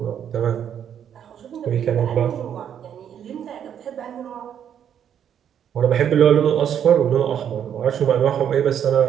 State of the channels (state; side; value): quieter; left; 9.1 dB